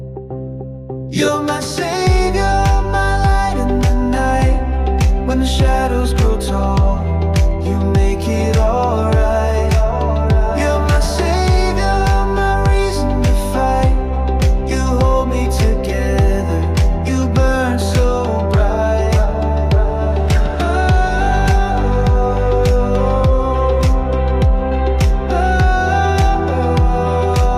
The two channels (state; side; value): identical; both; correlation 1.00